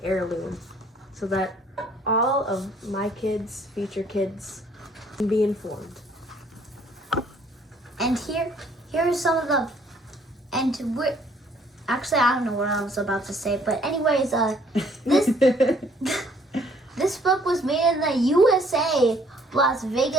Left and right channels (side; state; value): both; normal; correlation 0.61